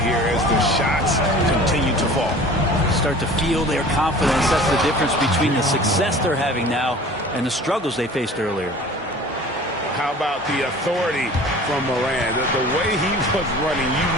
as the shots continue to fall. Start to feel their confidence. That's the difference between the success they're having now and the struggles they faced earlier. How about the authority from Morant? The way he was running, you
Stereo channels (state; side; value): normal; both; correlation 0.44